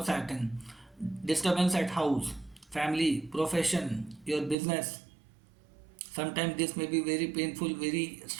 Saturn. Disturbance at house, family, profession, your business. Sometimes this may be very painful, very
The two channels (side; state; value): left; drops out; at 4.5 s